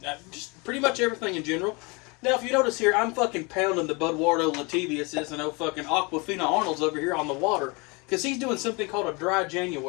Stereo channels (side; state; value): right; quieter; 28.5 dB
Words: just pretty much everything in general. Now, if you notice here, I'm fucking pounding the Budwardo Latavius and fucking Aquafina Arnold's over here on the water. Because he's doing something called a dry